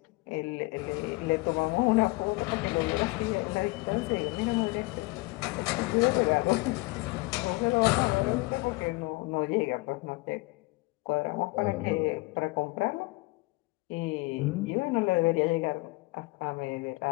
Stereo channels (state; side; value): quieter; right; 23.9 dB